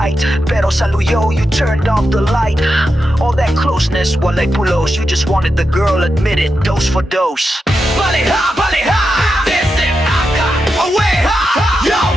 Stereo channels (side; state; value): both; normal; correlation 0.88